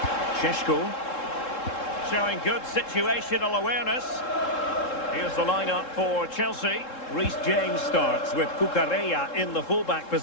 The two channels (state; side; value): late; right; 3.7 ms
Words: Šeško showing good situational awareness. Here's the lineup for Chelsea. Reece James starts with Cucurella in the fullback